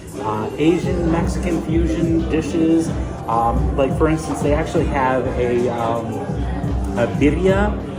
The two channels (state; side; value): identical; both; correlation 1.00